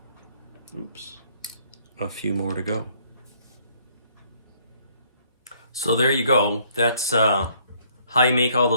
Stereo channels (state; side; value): inverted; both; correlation -0.64